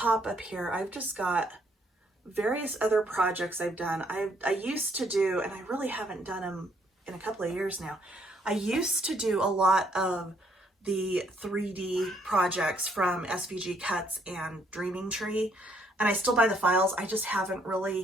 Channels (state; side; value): normal; both; correlation 0.69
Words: up here, I've just got various other projects I've done. I used to do, and I really haven't done them in a couple of years now, I used to do a lot of the 3D projects from SVG Cuts and Dreaming Tree, and I still buy the files. I just haven't